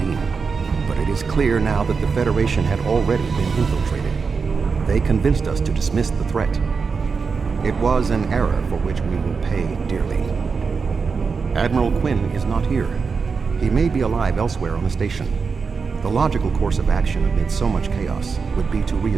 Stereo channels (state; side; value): quieter; left; 5.2 dB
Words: but it is clear now that the Federation had already been infiltrated. They convinced us to dismiss the threat. It was an error for which we will pay dearly. Admiral Quinn is not here. He may be alive elsewhere on the station. The logical course of action amid so much chaos would be to